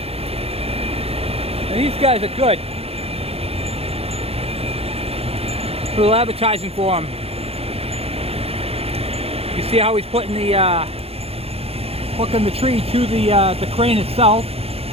and these guys are good. A little advertising for them. You see how he's putting the hooking the tree to the crane itself.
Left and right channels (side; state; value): left; late; 0.29 ms